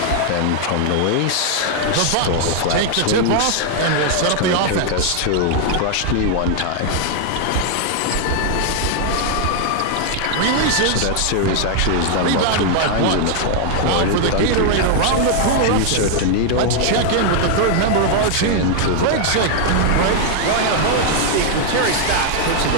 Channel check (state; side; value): different; both; correlation 0.00